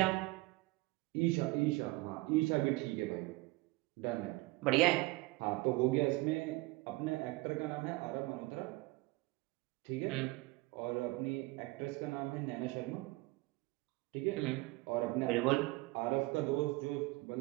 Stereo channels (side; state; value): left; quieter; 22.1 dB